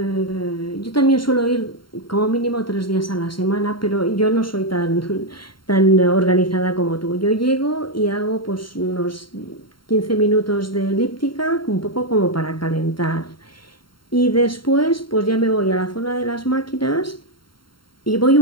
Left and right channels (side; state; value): right; late; 0.73 ms